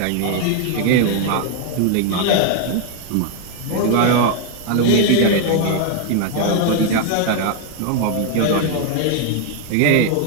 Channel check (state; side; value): different; both; correlation 0.00